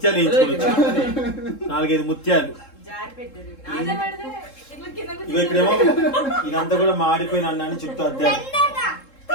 వేయించుకొని వచ్చారు. 4-5 ముత్యాలు. ఇగో ఇక్కడేమో ఇదంతా కూడా మాడిపోయిన అన్నాన్ని చుట్టూ అద్దారు.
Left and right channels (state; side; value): late; right; 3.7 ms